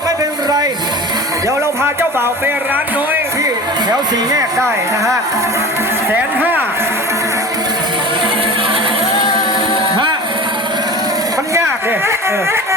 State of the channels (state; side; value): normal; both; correlation 0.34